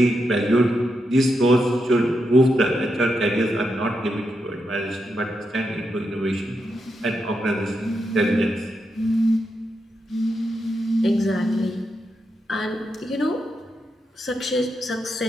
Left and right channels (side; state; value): both; normal; correlation 0.84